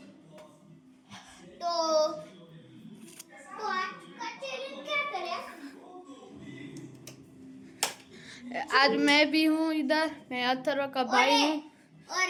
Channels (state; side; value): identical; both; correlation 1.00